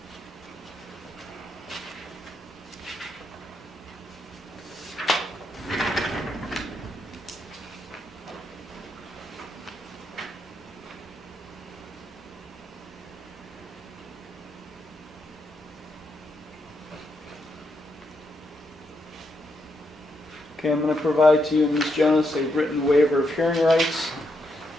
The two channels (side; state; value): both; normal; correlation 0.81